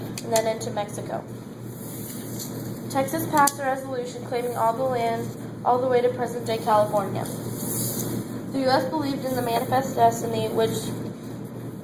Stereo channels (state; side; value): identical; both; correlation 1.00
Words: then into Mexico. Texas passed a resolution claiming all the land all the way to present-day California. The U.S. believed in the Manifest Destiny, which